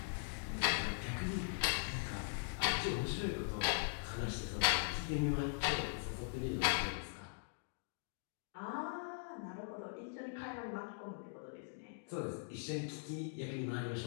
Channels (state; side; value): silent; right; digital silence